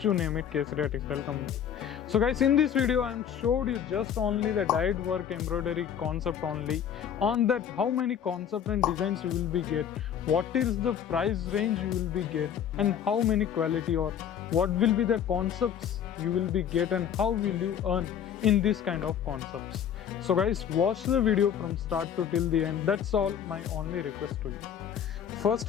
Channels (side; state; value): right; quieter; 8.8 dB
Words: you name it, Kesaria Textile Company. So guys, in this video I am showed you just only the dyed work embroidery concept only. On that, how many concept and designs you will be get, what is the price range you will be get, and how many quality or what will be the concepts you will be get, and how will you earn in this kind of concepts. So guys, watch the video from start to till the end. That's all my only request to you. First